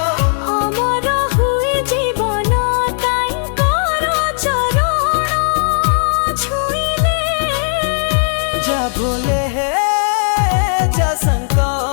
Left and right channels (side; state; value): right; silent; digital silence